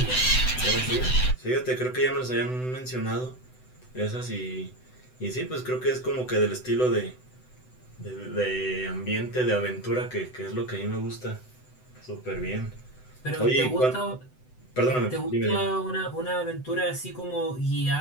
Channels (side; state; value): right; late; 7.9 ms